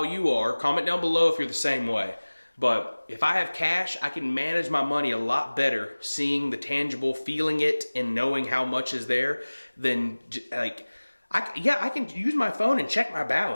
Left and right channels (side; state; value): both; inverted; correlation -1.00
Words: you are. Comment down below if you're the same way. But if I have cash, I can manage my money a lot better, seeing the tangible, feeling it, and knowing how much is there, than, like, I can use my phone and check my